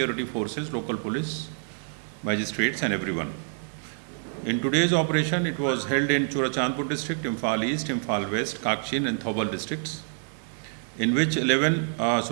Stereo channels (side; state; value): left; silent; digital silence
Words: forces, local police, magistrates and everyone. In today's operation, it was held in Churachandpur district, Imphal East, Imphal West, Kakshin and Thoubal districts, in which 11